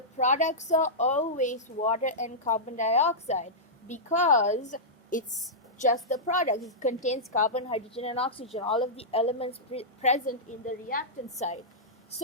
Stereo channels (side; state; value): both; normal; correlation -0.12